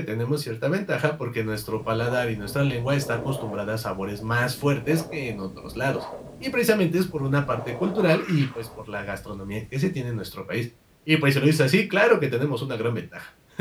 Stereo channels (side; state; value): both; identical; correlation 1.00